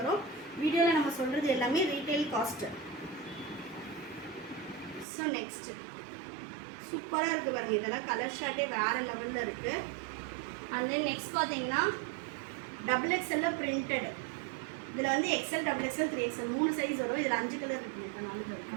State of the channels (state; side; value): drops out; left; at 5.1 s